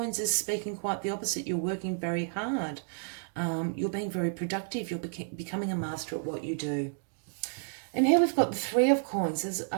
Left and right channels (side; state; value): left; silent; 57 dB below the other